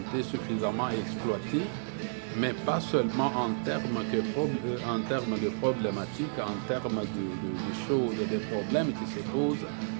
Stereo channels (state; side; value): silent; left; digital silence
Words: suffisamment exploitée, mais pas seulement en termes de problématiques, en termes de choses, des problèmes qui se posent,